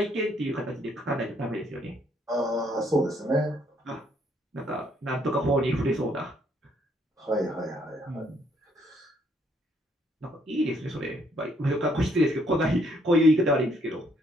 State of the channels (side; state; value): both; normal; correlation 0.69